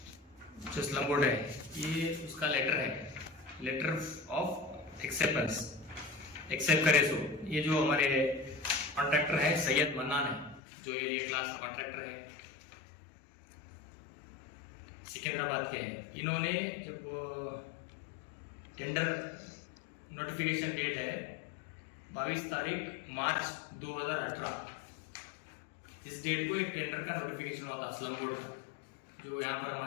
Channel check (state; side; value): drops out; right; at 10.6 s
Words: जो स्लम बोर्ड है, ये उसका लेटर है, लेटर ऑफ एक्सेप्टेंस, एक्सेप्ट करे सो। ये जो हमारे कॉन्ट्रैक्टर है सैयद मन्नान है, जो ये लिए क्लास कॉन्ट्रैक्टर है, सिकंदराबाद के हैं। इन्होंने जब टेंडर नोटिफिकेशन डेट है 22 तारीख मार्च 2018, इस डेट को एक टेंडर का नोटिफिकेशन हुआ था स्लम बोर्ड का, जो यहाँ पर